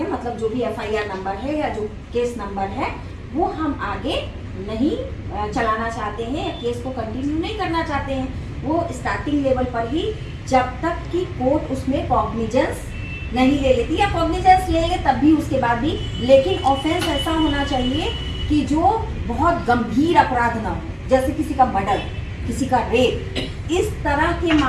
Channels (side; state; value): both; identical; correlation 1.00